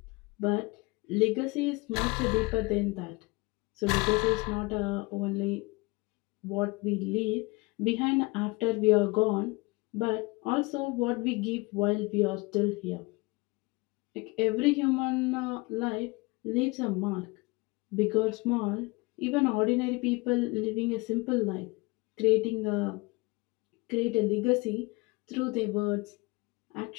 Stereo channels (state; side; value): quieter; right; 25.1 dB